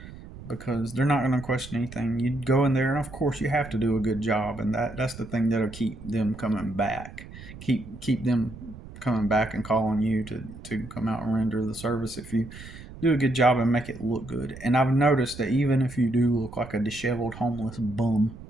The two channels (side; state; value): right; noise; rumble, 15 dB below the sound